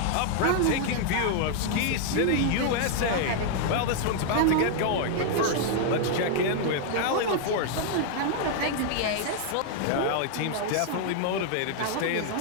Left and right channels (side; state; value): both; different; correlation 0.00